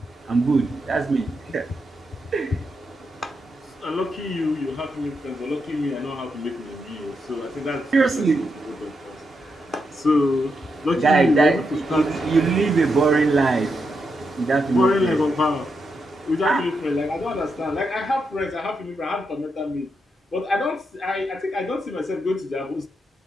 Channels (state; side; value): normal; both; correlation 0.83